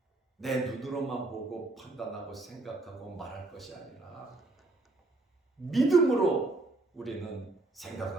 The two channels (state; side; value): quieter; left; 3.0 dB